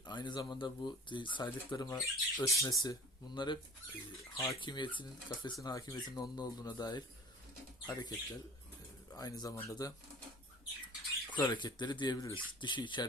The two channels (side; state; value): both; normal; correlation 0.43